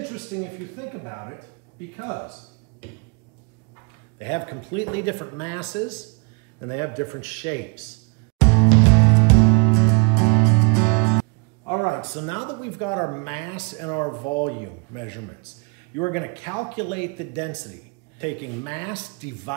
if you think about it, because they have completely different masses and they have different shapes. All right, so now that we've got our mass and our volume measurements, you are going to calculate the density, taking mass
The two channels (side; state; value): left; quieter; 34.1 dB